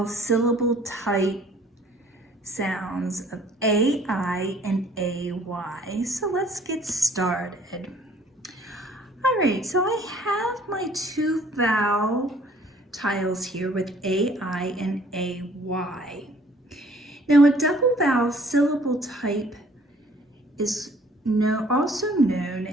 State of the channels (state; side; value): normal; both; correlation 0.56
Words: syllable type sounds of A-I and A-Y. So let's get started. All right, so I have my two vowel tiles here with A-I and A-Y. Now a double vowel syllable type is also